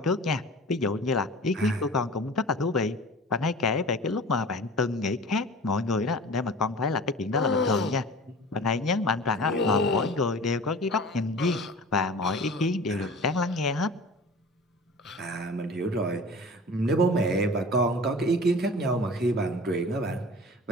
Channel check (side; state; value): both; normal; correlation 0.40